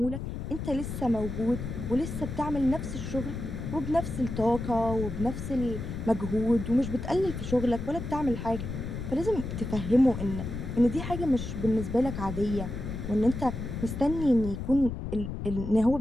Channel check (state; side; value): noise; left; rumble, 6 dB below the sound